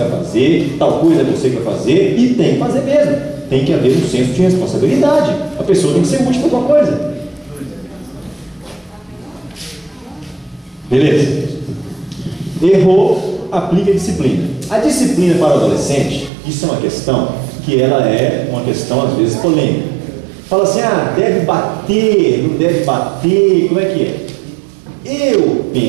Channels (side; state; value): left; drops out; at 16.3 s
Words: fazer, tal coisa é você que vai fazer, e tem que fazer mesmo. Tem que haver um senso de responsabilidade. A pessoa tem que ser útil para alguma coisa. Beleza? Errou, aplica a disciplina. A disciplina para o adolescente, isso é uma questão que ela é uma questão às vezes polêmica. Fala assim, deve bater, não deve bater, como é que é? Eu